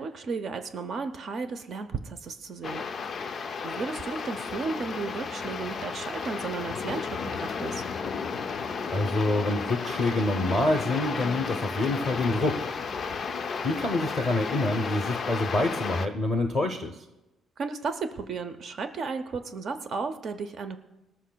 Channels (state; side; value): normal; both; correlation 0.75